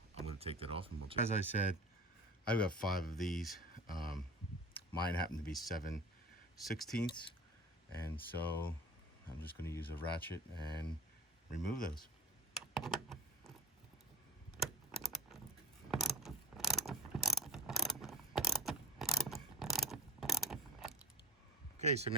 I'm going to take that off, and as I said, I've got 5 of these. Mine happen to be 7/16, and so I'm just going to use a ratchet and remove those. Okay, so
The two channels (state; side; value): normal; both; correlation 0.33